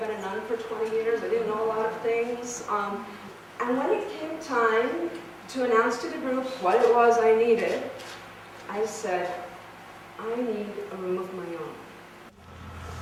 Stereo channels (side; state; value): both; identical; correlation 1.00